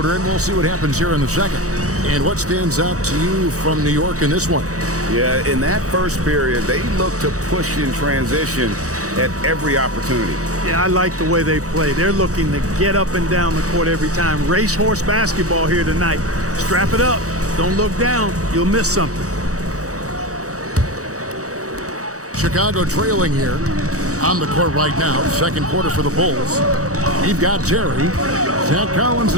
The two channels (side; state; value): left; late; 0.66 ms